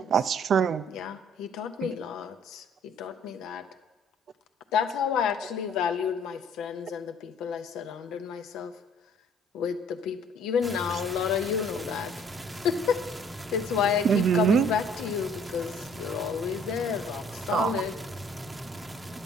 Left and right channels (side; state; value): both; normal; correlation 0.57